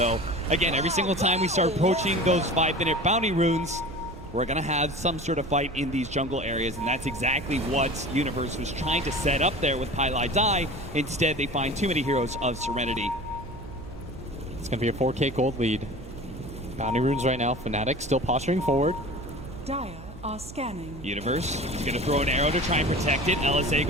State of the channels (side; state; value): right; noise; hum, 15 dB below the sound